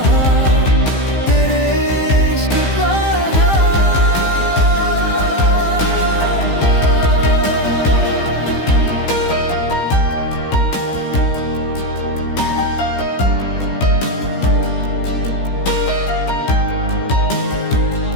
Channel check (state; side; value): late; right; 15 ms